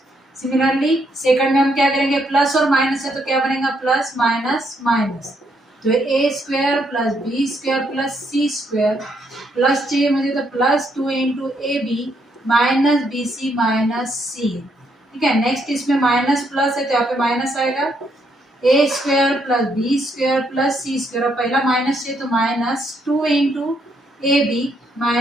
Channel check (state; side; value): normal; both; correlation 0.74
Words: Similarly second में हम क्या करेंगे, plus और माइनस है तो क्या बनेगा, प्लस माइनस माइनस, तो a square plus b square plus c square plus चाहिए मुझे तो plus 2 into a b minus b c minus c, ठीक है। नेक्स्ट इसमें माइनस प्लस है तो यहाँ पे माइनस आएगा, a square plus b square plus c square, और पहला माइनस है तो minus 2 into a b